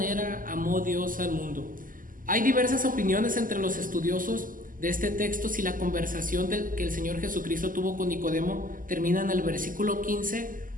amó Dios al mundo. Hay diversas opiniones entre los estudiosos de este texto si la conversación que el Señor Jesucristo tuvo con Nicodemo termina en el versículo 15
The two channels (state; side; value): late; left; 0.40 ms